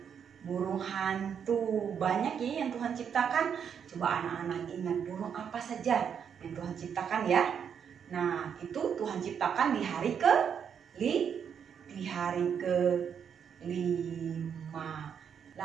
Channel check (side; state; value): left; quieter; 7.6 dB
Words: burung hantu. Banyak ya yang Tuhan ciptakan. Coba anak-anak ingat burung apa saja yang Tuhan ciptakan ya. Nah, itu Tuhan ciptakan di hari kelima.